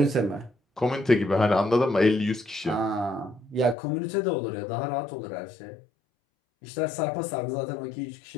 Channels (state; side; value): drops out; right; at 3.8 s